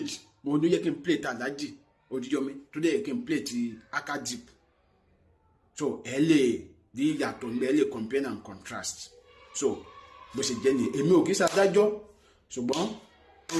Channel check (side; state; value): both; identical; correlation 1.00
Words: mo ní yẹ kí n play ti Alhaji Oríyọmí tó dẹ̀ yẹ kí n play ti Akadip so ẹ lè di ìyàtọ̀ ní ẹ lè compare and contrast so bó ṣe jẹ́ ni èmi ò kì í ṣàdájọ́ ṣùgbọ́n